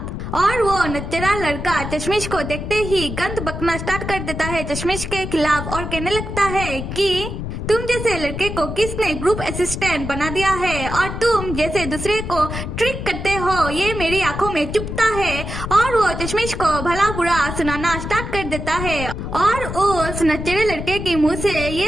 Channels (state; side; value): noise; left; rumble, 6 dB below the sound